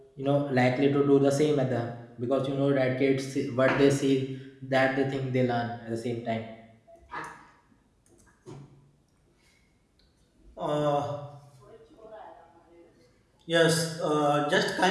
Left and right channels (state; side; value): identical; both; correlation 1.00